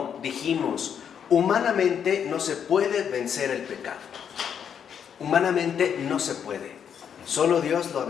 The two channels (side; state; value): right; quieter; 8.0 dB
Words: dijimos, humanamente no se puede vencer el pecado. Humanamente no se puede. Solo Dios lo ha